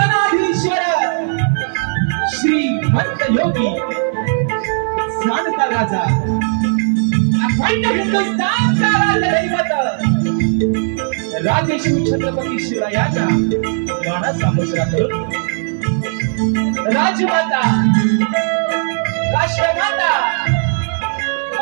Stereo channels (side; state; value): left; silent; 62 dB below the other